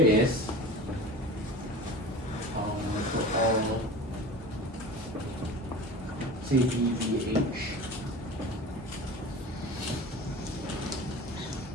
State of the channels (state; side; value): normal; both; correlation 0.35